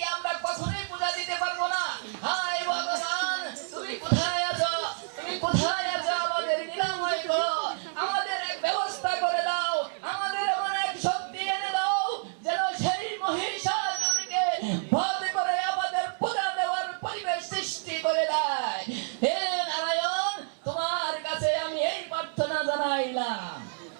আমরা কখনোই পূজা দিতে পারবো না। হায় ভগবান, তুমি কোথায় আছো? তুমি কোথায় আছো? আমাদের নিরাময় করো, আমাদের এক ব্যবস্থা করে দাও, আমাদের এমন এক শক্তি এনে দাও যেন সেই মহিষাসুরকে বধ করে আমাদের পূজা দেওয়ার পরিবেশ সৃষ্টি করে দেয়। হে নারায়ণ, তোমার কাছে আমি এই প্রার্থনা জানাইলাম।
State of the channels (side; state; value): left; silent; 58 dB below the other